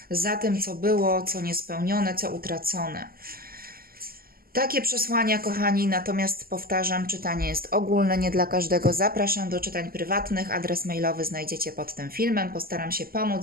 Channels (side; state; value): left; late; 0.43 ms